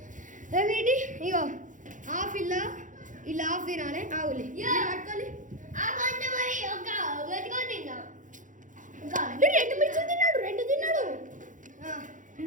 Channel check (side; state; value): left; late; 0.37 ms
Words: ఏంటి ఇగో హాఫ్ ఇలా హాఫ్ తినాలి. ఆవులే పట్టుకోవాలి. రెండు మిర్చి తిన్నాడు. రెండు తిన్నాడు.